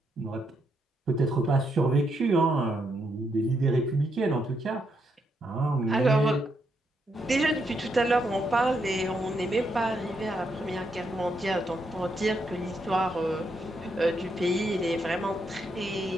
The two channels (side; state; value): both; normal; correlation 0.78